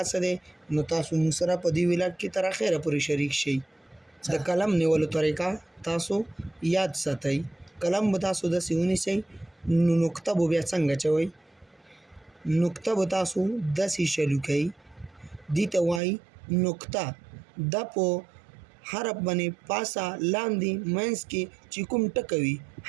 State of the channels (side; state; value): left; drops out; at 16.0 s